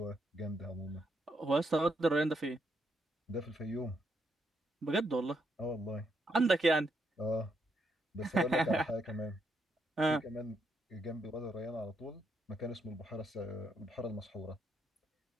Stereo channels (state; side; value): normal; both; correlation 0.77